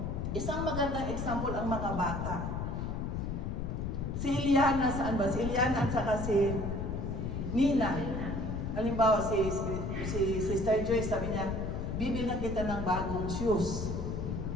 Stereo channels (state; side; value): noise; left; rumble, 3 dB below the sound